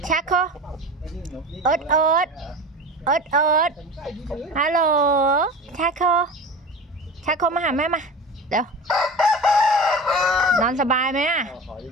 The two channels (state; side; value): normal; both; correlation 0.33